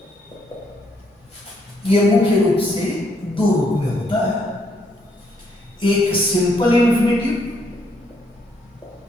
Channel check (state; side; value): late; right; 1.1 ms